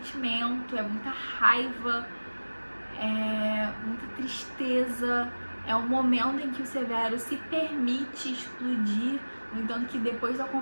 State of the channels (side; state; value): both; inverted; correlation -1.00